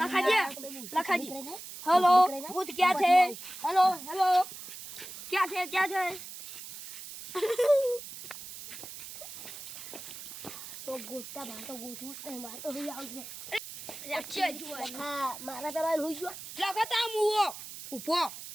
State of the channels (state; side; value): noise; right; hiss, 12 dB below the sound